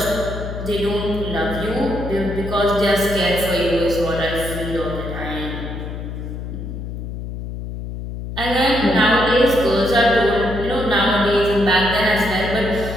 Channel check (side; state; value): left; noise; hum, 7 dB below the sound